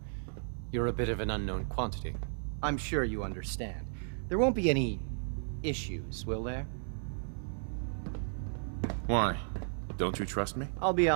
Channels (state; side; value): silent; left; digital silence